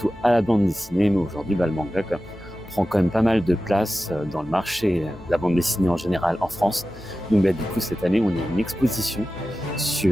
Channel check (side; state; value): both; normal; correlation 0.94